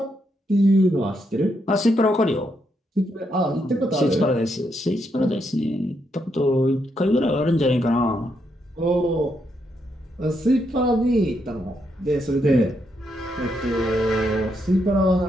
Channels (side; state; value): both; normal; correlation 0.79